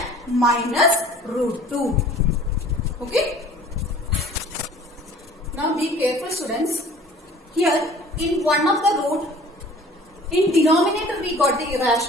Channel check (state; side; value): normal; both; correlation 0.49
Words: minus root 2. Okay? Now be careful students. Here in one of the root, in denominator we got the